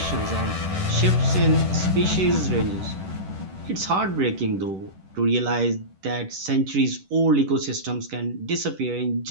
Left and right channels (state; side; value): late; left; 10 ms